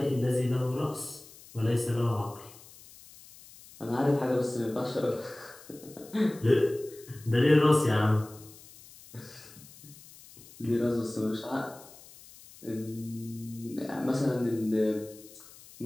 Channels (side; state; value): left; noise; hiss, 21 dB below the sound